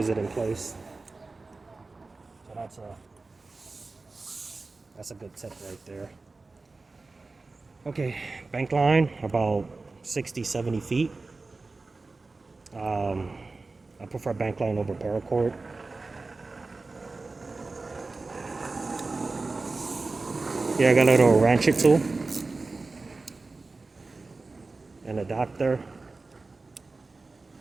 it in place. So that's a good tip right there. Okay, bank line about 60-70 feet. I prefer bank line over paracord. Yeah, I got a little ratchet tool, an adapter,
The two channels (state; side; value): quieter; left; 3.6 dB